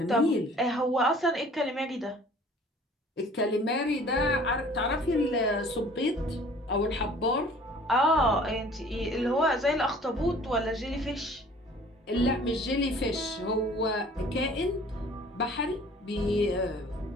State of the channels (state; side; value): normal; both; correlation 0.51